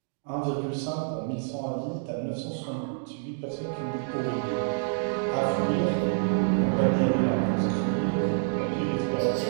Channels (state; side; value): silent; left; digital silence